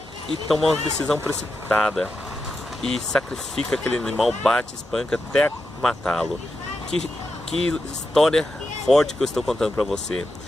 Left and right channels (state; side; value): normal; both; correlation 0.87